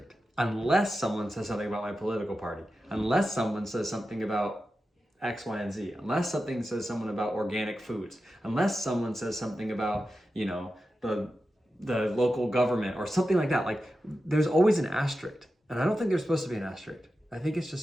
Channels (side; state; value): both; normal; correlation 0.91